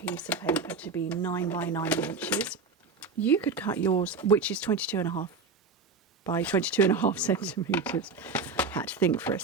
of paper to be 9 by 9 inches. You could cut yours, which is 22.5 by 22.5 centimetres. Had to think for a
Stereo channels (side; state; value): left; quieter; 4.3 dB